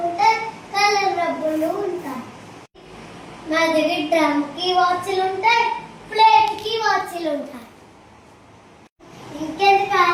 ఉంటాయి, కలర్ రబ్బర్లు ఉంటాయి. మా దగ్గర డ్రమ్ కి వాచ్లు ఉంటాయి, ప్లేట్ కి వాచ్లు ఉంటాయి. ఇంకెందుకు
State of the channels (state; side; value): identical; both; correlation 1.00